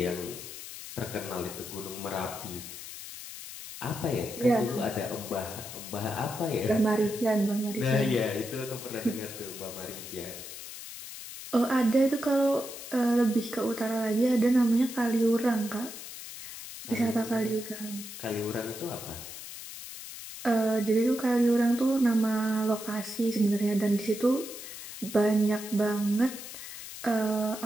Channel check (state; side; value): noise; left; hiss, 11 dB below the sound